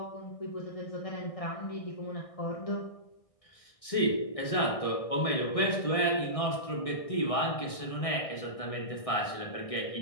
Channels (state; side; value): late; right; 1.6 ms